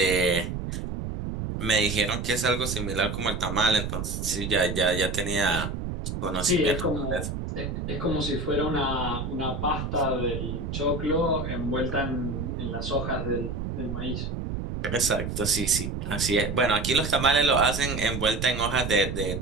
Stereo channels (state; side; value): noise; right; rumble, 4 dB below the sound